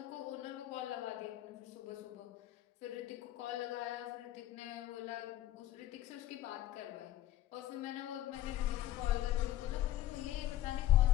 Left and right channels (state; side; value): quieter; right; 13.6 dB